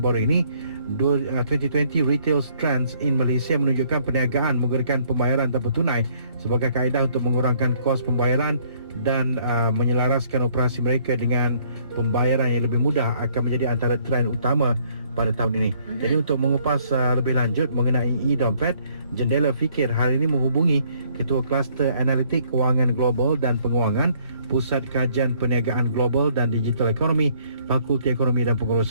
ini 2020 Retail Trends in Malaysia menunjukkan perniagaan menggunakan pembayaran tanpa tunai sebagai kaedah untuk mengurangkan kos pembayaran dan menyelaraskan operasi mereka dengan pembayaran yang lebih mudah akan menjadi antara trend utama pada tahun ini. Jadi untuk mengupas lebih lanjut mengenai e-dompet, Jendela Fikir hari ini menghubungi Ketua Kluster Analitik Kewangan Global dan Penguangan Pusat Kajian Perniagaan Global dan Digital Ekonomi Fakulti Ekonomi dan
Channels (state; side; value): inverted; both; correlation -0.63